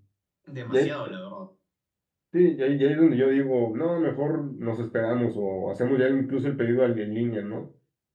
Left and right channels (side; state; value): both; identical; correlation 1.00